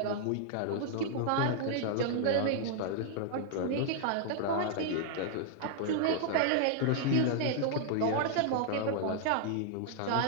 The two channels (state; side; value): different; both; correlation -0.01